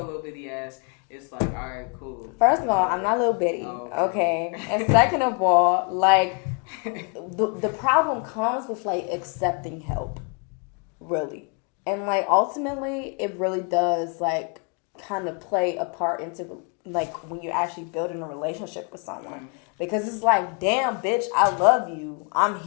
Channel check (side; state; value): right; quieter; 37.1 dB